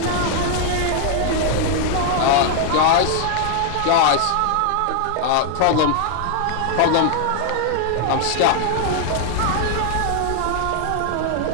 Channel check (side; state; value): both; different; correlation 0.00